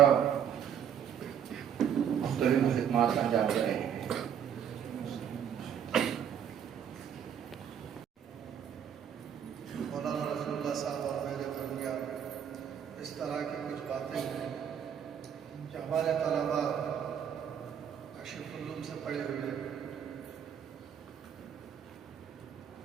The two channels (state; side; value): quieter; left; 8.7 dB